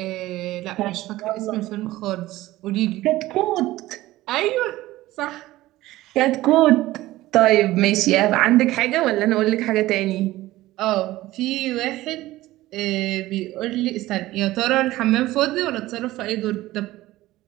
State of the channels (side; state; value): left; quieter; 16.9 dB